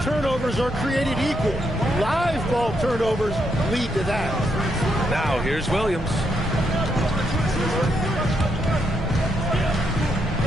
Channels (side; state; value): both; normal; correlation 0.79